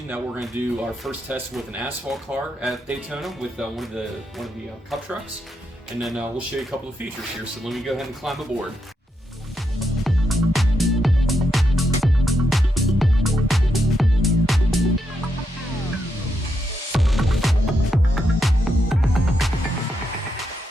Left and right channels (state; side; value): normal; both; correlation 0.82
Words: that we're going to do our first test with an asphalt car at Daytona with one of the Cup trucks, and then we'll show you a couple of features here. So let me go ahead and climb aboard.